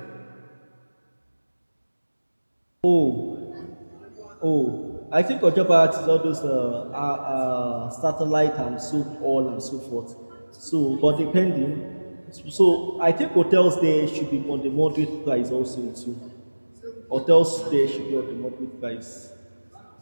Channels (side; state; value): both; inverted; correlation -1.00